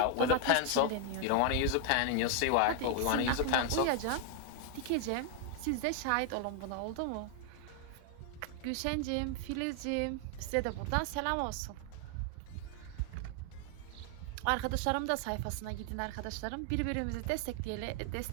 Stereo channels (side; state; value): both; different; correlation 0.00